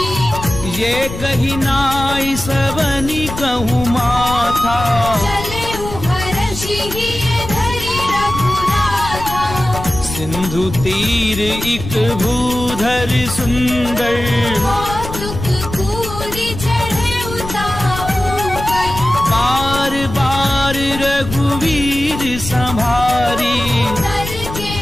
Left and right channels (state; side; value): noise; left; rumble, 9 dB below the sound